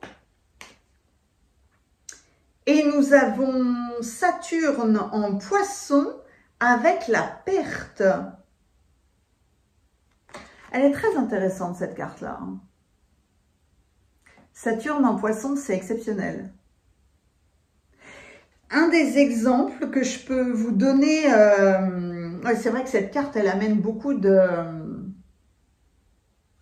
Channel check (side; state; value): both; identical; correlation 1.00